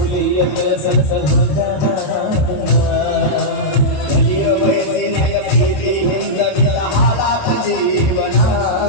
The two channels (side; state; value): right; late; 28 ms